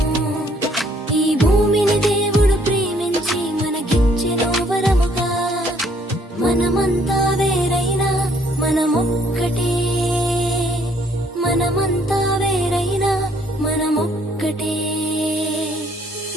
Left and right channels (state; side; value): normal; both; correlation 0.65